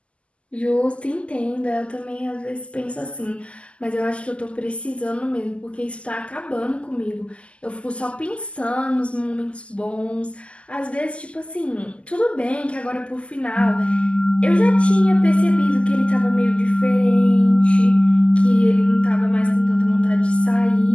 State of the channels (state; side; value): late; right; 0.056 ms